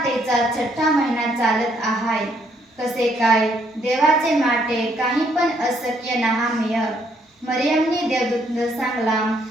तेचा 6ठा महिना चालत आहाय. कसे काय देवाचे माटे काही पण अशक्य नहामेय. मरियमने देवदूतला सांगला,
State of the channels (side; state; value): both; normal; correlation 0.70